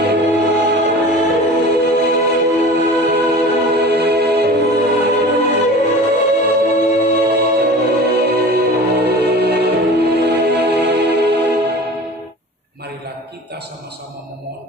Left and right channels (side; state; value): both; normal; correlation 0.39